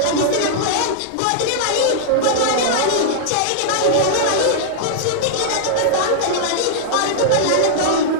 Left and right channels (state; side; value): different; both; correlation -0.01